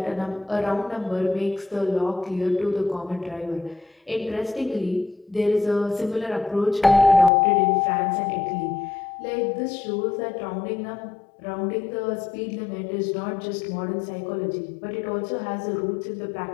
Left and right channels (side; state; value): right; drops out; at 7.3 s